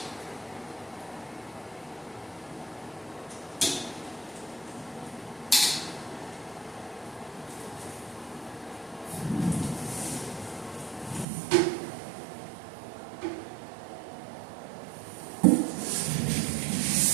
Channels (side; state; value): left; drops out; at 11.2 s